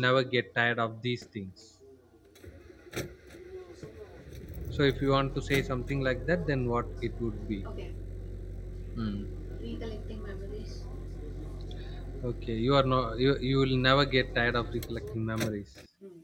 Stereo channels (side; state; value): both; identical; correlation 1.00